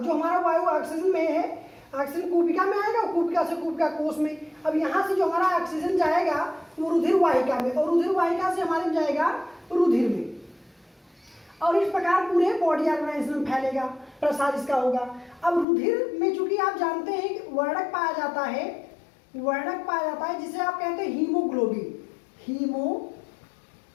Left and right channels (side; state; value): right; drops out; at 15.7 s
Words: हमारा वायु ऑक्सीजन में है, ऑक्सीजन कूपिका में आएगा, कूपिका से कूपिका कोश में। अब यहाँ से जो हमारा ऑक्सीजन जाएगा वो रुधिर वाहिका में, और रुधिर वाहिका से हमारे जाएगा रुधिर में, और इस प्रकार पूरे बॉडी ऑर्गेनाइज्म में फैलेगा, प्रसार इसका होगा। अब रुधिर में चूंकि आप जानते हैं कि वर्णक पाया जाता है, वर्णक पाया जाता है जिसे आप कहते हैं हीमोग्लोबिन।